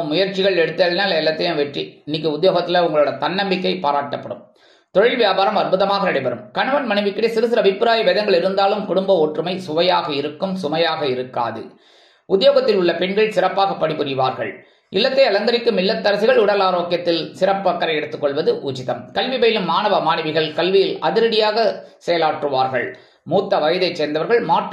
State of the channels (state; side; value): identical; both; correlation 1.00